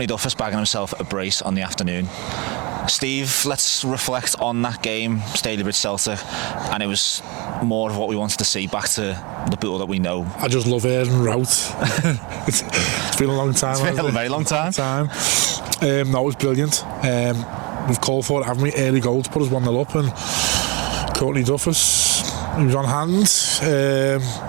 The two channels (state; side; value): quieter; left; 28.2 dB